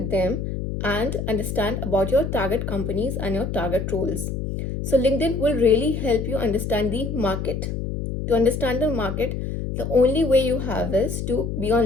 them and understand about your target companies and your target roles. So LinkedIn will really help you understand the market. To understand the market, The only way you have is to be on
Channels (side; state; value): left; noise; hum, 4 dB below the sound